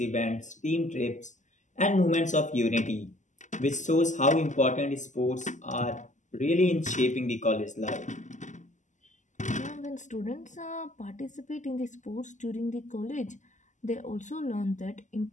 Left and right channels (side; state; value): right; late; 0.35 ms